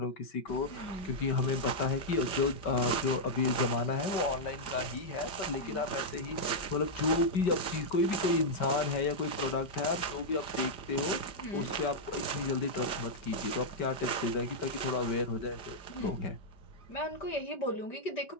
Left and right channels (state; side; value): late; right; 4.9 ms